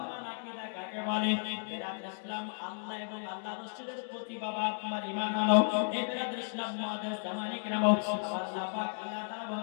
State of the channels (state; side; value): silent; right; digital silence